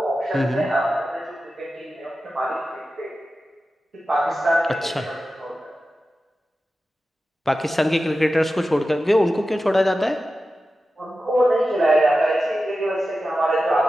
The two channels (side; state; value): both; normal; correlation 0.93